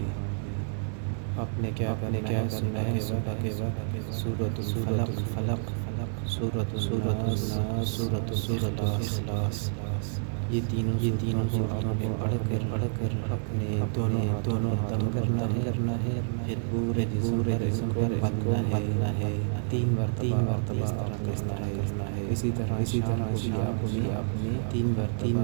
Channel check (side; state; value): left; silent; digital silence